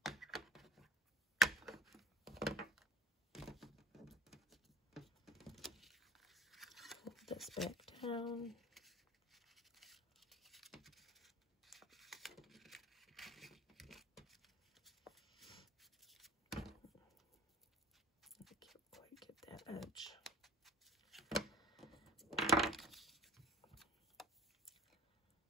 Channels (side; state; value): both; normal; correlation 0.46